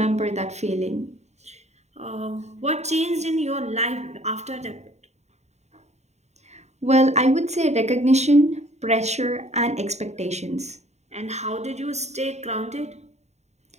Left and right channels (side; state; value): left; late; 0.32 ms